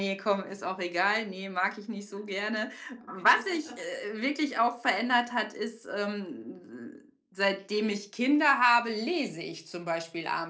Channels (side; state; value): both; identical; correlation 1.00